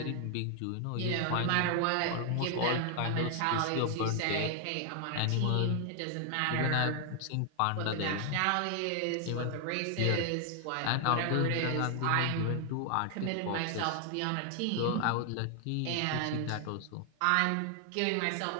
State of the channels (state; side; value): different; both; correlation 0.00